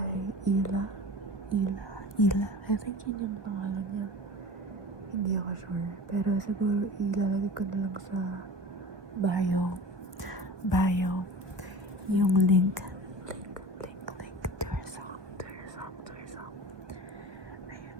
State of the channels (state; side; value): late; left; 1.4 ms